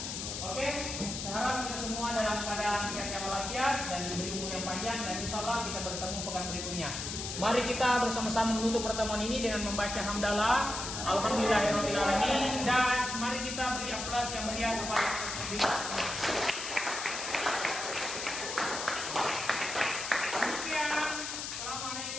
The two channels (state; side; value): noise; left; hiss, 5 dB below the sound